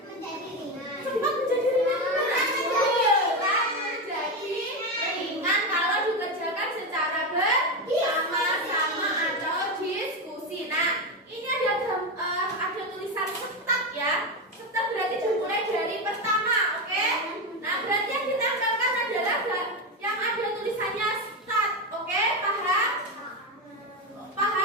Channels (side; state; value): both; normal; correlation 0.13